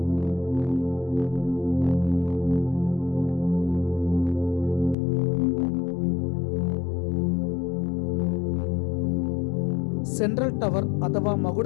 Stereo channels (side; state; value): right; drops out; at 5.0 s